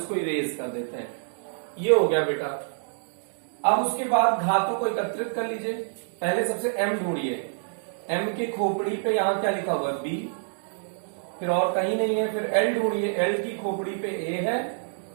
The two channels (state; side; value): silent; left; digital silence